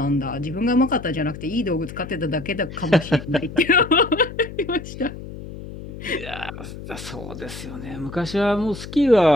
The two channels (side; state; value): left; noise; hum, 12 dB below the sound